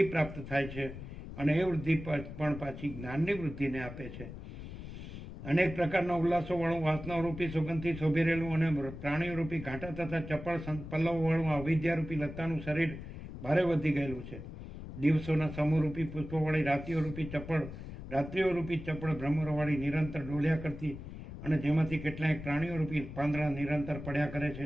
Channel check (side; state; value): left; noise; rumble, 11 dB below the sound